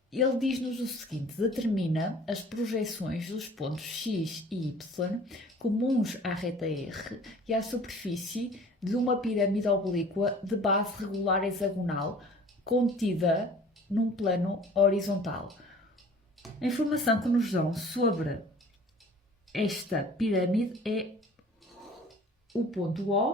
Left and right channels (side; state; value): both; normal; correlation 0.48